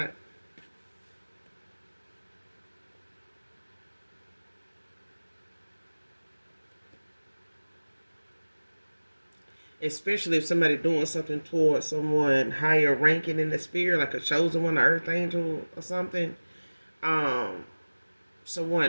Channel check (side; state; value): both; inverted; correlation -1.00